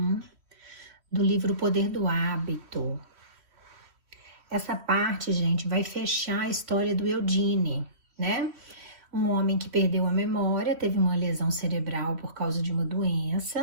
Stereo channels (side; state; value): left; late; 3.1 ms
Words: do livro O Poder do Hábito. Essa parte, gente, vai fechar a história do Eugene, né? Um homem que perdeu a memória, teve uma lesão cerebral por causa de uma